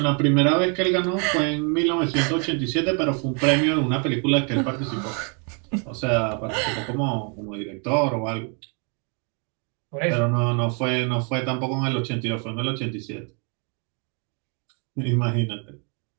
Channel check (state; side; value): quieter; left; 37.6 dB